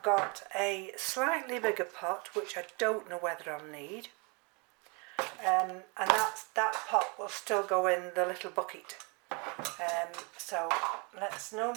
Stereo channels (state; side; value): quieter; left; 31.1 dB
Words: got a slightly bigger pot which I don't know whether I'll need, and that pot will still go in the little bucket. So let's no